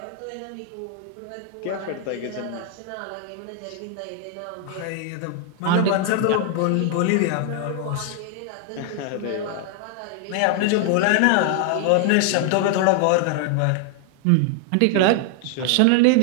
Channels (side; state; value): both; different; correlation 0.00